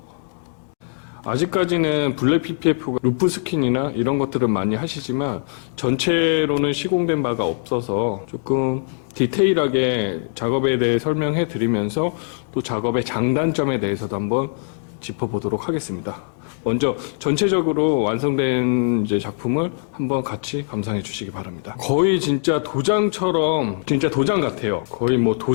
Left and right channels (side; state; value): right; silent; digital silence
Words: 아직까지는 블랙 PPF가 루프 스킨이나 이런 것들은 많이 하시지만 전체로는 시공된 바가 없어서 조금 디테일하게 작업에 대해 설명해 드리면서 또 작업의 장단점에 대해서도 한번 짚어보도록 하겠습니다. 먼저 전체적으로 완성된 이제 작품을 한번 같이 감상해 주시기 바랍니다. 거의 진짜 도장처럼 진짜 도장 같아요. 거의 뭐